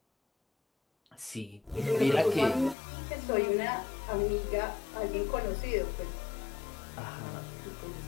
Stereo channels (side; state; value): right; drops out; at 2.8 s